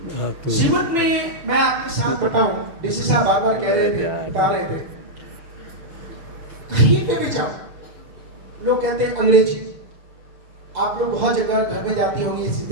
जीवन में मैं आपके साथ बताऊं, डीसी साहब बार बार कह रहे थे, बता रहे थे, कहीं पे भी जाओ लोग कहते हैं अंग्रेजी। आप लोग बहुत जगह घर में जाती होंगी,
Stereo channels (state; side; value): late; left; 6.9 ms